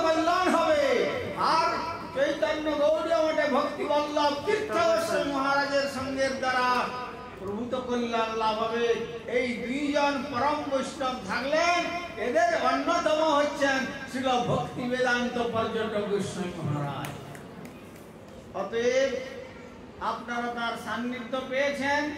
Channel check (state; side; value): identical; both; correlation 1.00